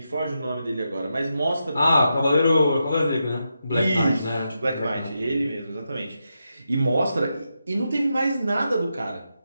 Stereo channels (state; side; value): inverted; both; correlation -0.86